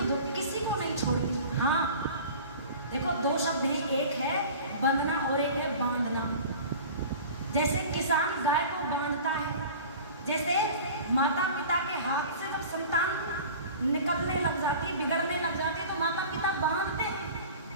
दुख किसी को नहीं छोड़ती। हाँ देखो, दो शब्द हैं, एक है बंधना और एक है बांधना। जैसे किसान गाय को बांधता है, जैसे माता पिता के हाथ से जब संतान निकलने लग जाती है, बिगड़ने लग जाती है, तो माता पिता बांधते हैं।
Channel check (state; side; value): inverted; both; correlation -0.40